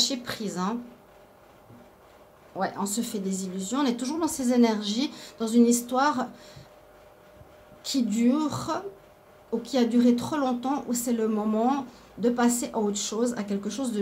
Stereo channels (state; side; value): identical; both; correlation 1.00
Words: prise, Ouais, on se fait des illusions. On est toujours dans ces énergies, dans une histoire qui dure ou qui a duré trop longtemps, où c'est le moment de passer à autre chose, à quelque chose de